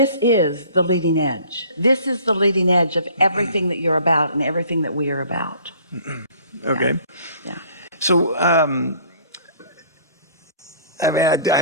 is the leading edge. This is the leading edge of everything that you're about and everything that we are about. Okay. Yeah. So, I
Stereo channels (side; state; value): both; inverted; correlation -0.52